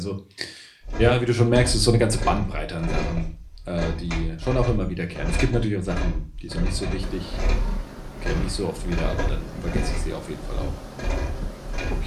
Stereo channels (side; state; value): both; identical; correlation 1.00